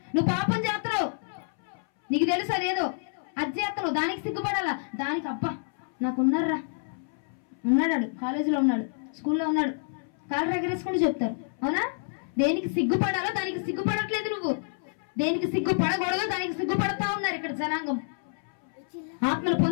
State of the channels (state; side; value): silent; right; 59 dB below the other